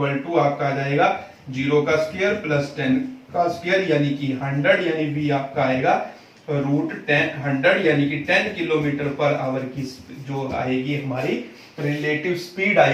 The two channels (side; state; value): both; identical; correlation 1.00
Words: = आपका आ जाएगा 0 का स्क्वायर प्लस 10 का स्क्वायर, यानी कि 100, यानी v आपका आएगा √10 यानी कि 10 किलोमीटर पर आवर की जो आएगी हमारी रिलेटिव स्पीड